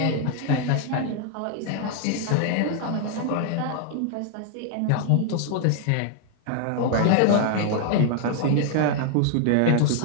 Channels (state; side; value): different; both; correlation 0.00